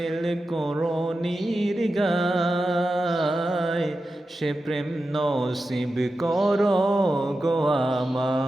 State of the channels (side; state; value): both; normal; correlation 0.91